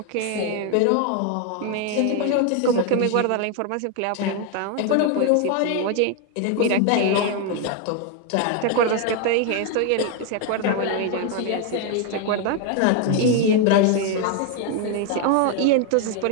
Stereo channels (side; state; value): both; different; correlation 0.01